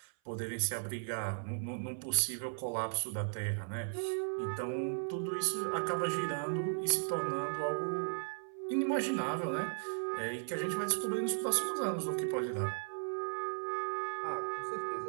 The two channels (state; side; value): silent; left; 53 dB below the other